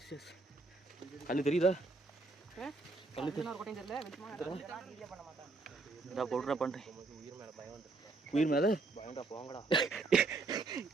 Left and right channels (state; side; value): quieter; left; 3.5 dB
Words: கல்லு தெரியுதா? உயிர் மேல பயம்டா. போங்கடா.